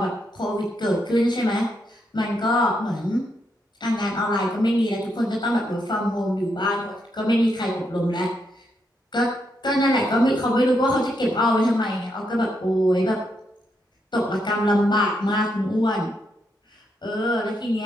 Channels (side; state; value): both; normal; correlation 0.80